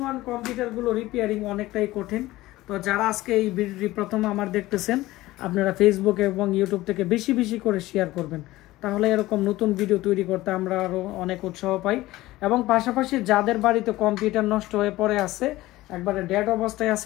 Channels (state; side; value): quieter; right; 17.6 dB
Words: ওয়ান কম্পিউটারগুলো রিপেয়ারিং অনেকটাই কঠিন। তো যারা আজকে এই ভিডিওটি প্রথম আমার দেখতেছেন, আপনারা ফেসবুক এবং ইউটিউব থেকে বেশি বেশি করে শেয়ার করবেন, তাহলে এরকম নতুন ভিডিও তৈরি করতে আমরা আরও অনেক উৎসাহ পাই। এবং পাশাপাশি যাদের বাড়িতে কম্পিউটার নষ্ট হয়ে পড়ে আছে, একবারে ডেড অবস্থায়